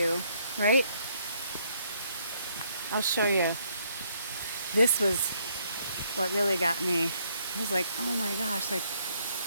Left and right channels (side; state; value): both; inverted; correlation -0.70